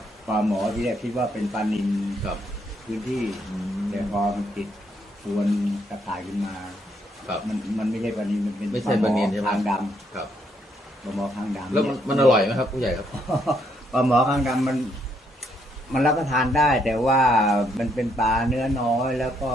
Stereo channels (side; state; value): both; normal; correlation 0.73